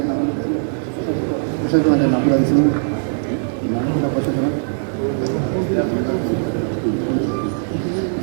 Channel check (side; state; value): left; silent; digital silence